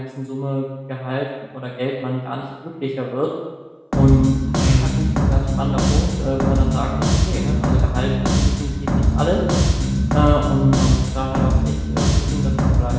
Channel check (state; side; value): identical; both; correlation 1.00